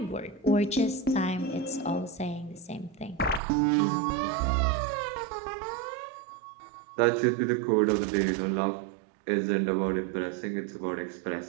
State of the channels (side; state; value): left; drops out; at 3.4 s